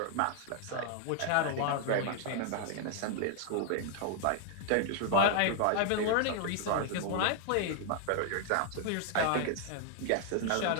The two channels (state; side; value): different; both; correlation 0.00